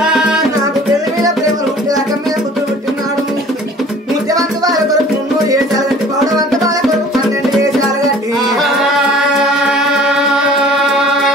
నాకు పెళ్లి మీద ప్రేమ పుట్టి రకం మీద బుద్ధి పుట్టినాడు ముత్యవంత వాళ్ళ కొరకు 300 ఏసాలు కట్టి పౌడవంత వాళ్ళ కొరకు 12 ఏసాలు కట్టి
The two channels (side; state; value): both; normal; correlation 0.48